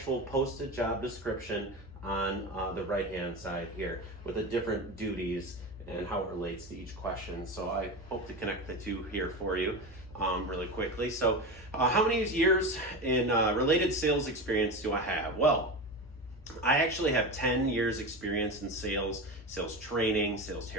posted job description on the right-hand side here with the different duties and how it relates to each question. So I hope to connect the two here for you really quickly. So how many years in related sales experience do I have? Well, I actually have 10 years experience in sales training, sales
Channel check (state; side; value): normal; both; correlation 0.24